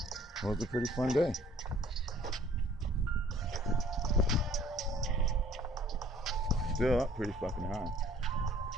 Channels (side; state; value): both; normal; correlation 0.56